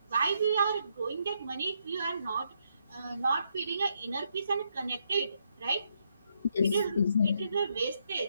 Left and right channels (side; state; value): both; inverted; correlation -0.77